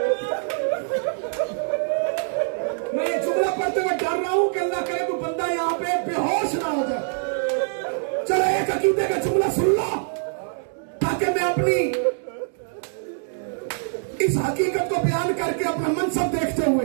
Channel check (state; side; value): silent; left; digital silence